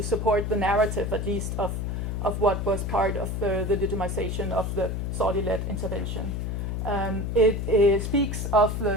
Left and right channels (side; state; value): left; noise; hum, 2 dB below the sound